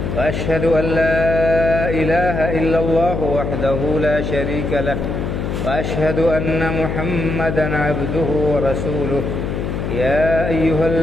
وأشهد أن لا إله إلا الله وحده لا شريك له وأشهد أن محمدًا عبده ورسوله يا أيها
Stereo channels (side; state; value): left; noise; hum, 3 dB below the sound